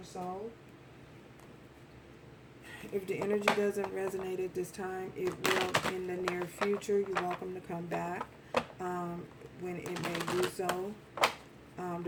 soul. If the energy doesn't resonate at this time, it will in the near future. You're welcome to come back when it may do so.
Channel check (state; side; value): identical; both; correlation 1.00